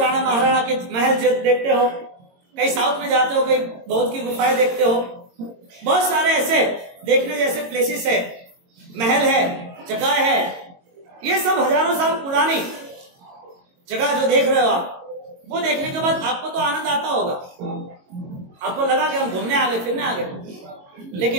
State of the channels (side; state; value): left; late; 22 ms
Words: राणा महाराणा के महल देखते हो, कहीं साउथ में जाते हो, कहीं बौद्ध की गुफाएं देखते हो। बहुत सारे ऐसे देखने जैसे प्लेसेस है, महल है, जगह है। ये सब हजारों साल पुरानी जगह जो देख रहे हो आप, वो देखने के बाद आपको तो आनंद आता होगा। आपको लगा कि हम घूमने आ गए, फिरने आ गए।